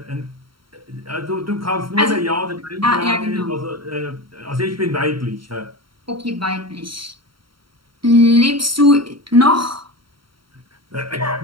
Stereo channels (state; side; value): late; left; 0.74 ms